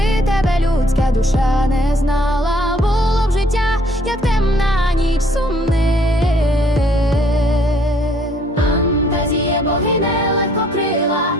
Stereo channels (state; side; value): normal; both; correlation 0.63